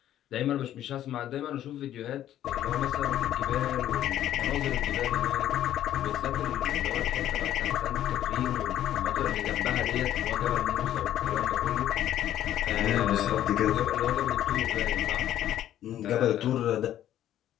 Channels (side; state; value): right; quieter; 11.9 dB